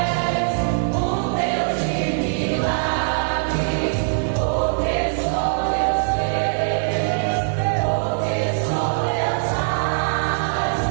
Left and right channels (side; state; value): left; silent; 57 dB below the other